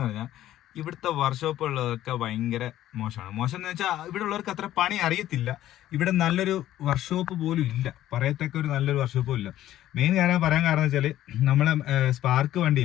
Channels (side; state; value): right; quieter; 13.3 dB